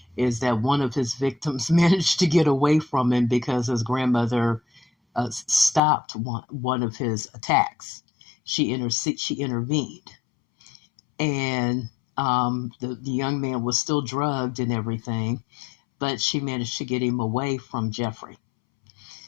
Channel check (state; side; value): drops out; right; at 5.8 s